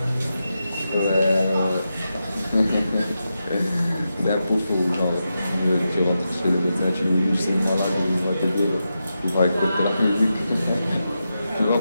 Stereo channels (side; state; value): both; inverted; correlation -0.88